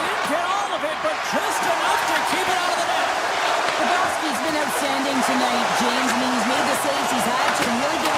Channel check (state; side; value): identical; both; correlation 1.00